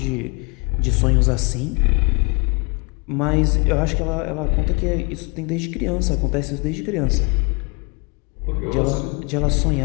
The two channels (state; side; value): quieter; right; 31.5 dB